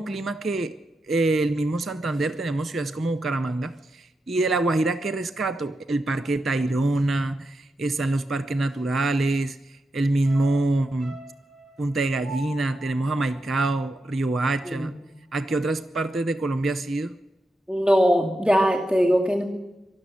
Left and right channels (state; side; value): normal; both; correlation 0.87